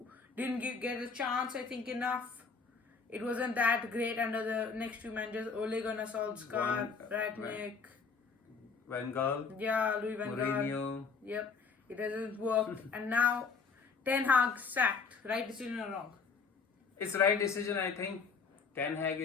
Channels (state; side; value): quieter; right; 5.1 dB